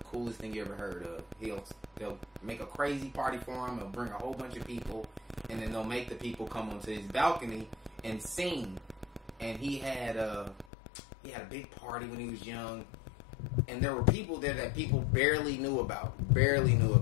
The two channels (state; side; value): drops out; right; at 10.7 s